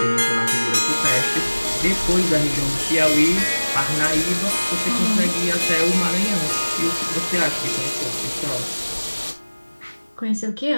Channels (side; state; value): both; inverted; correlation -1.00